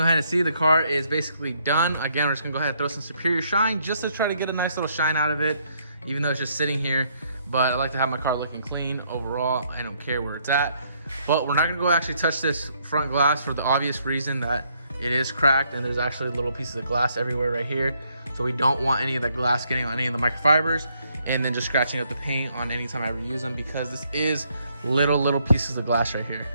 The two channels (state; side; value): inverted; both; correlation -0.70